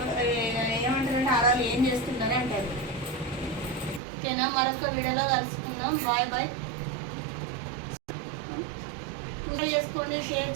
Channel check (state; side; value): drops out; left; at 4.0 s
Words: ఏమంటారంటే ఆడవాళ్ళు ఏం చేస్తుందని అంటారు. ఓకేనా, మరొక వీడియోలో కలుసుకుందాం. Bye bye. పూజ చేసుకోండి, షేర్